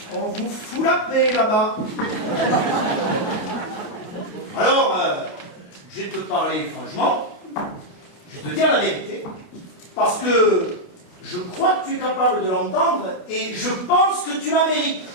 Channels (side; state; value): right; late; 28 ms